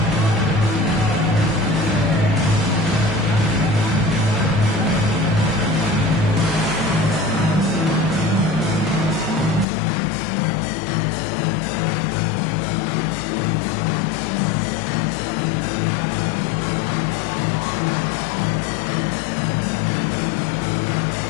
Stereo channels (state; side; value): drops out; right; at 9.7 s